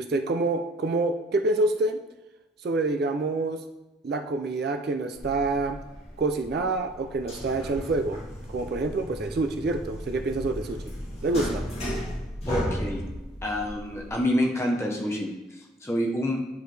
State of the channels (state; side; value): normal; both; correlation 0.52